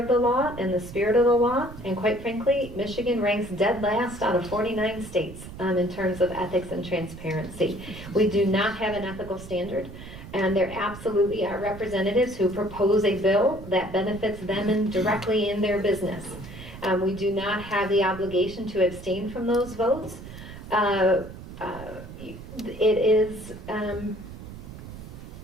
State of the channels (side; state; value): right; noise; rumble, 13 dB below the sound